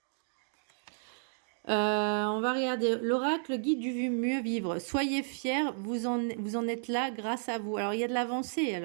On va regarder l'oracle guide du mieux vivre. Soyez fiers, vous en êtes là grâce à vous. Alors il y a de l'avancée,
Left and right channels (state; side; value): silent; left; digital silence